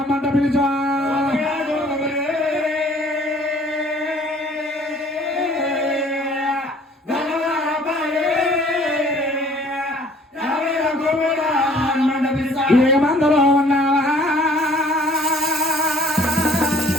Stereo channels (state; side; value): normal; both; correlation 0.55